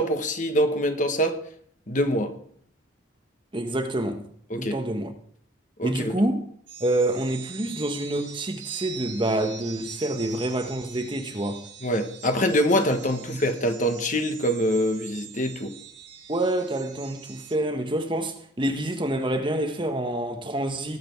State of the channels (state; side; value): normal; both; correlation 0.50